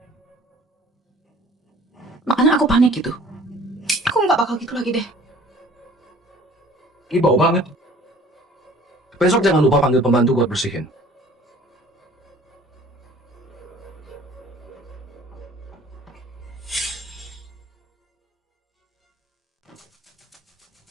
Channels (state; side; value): normal; both; correlation 0.51